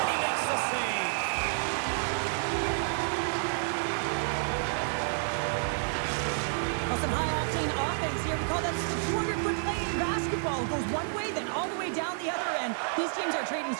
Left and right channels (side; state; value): left; silent; digital silence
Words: he makes the save. Well, some high-octane offense here. We call that the 200-foot play in basketball. It goes one way, then all the way down the other end. These teams are trading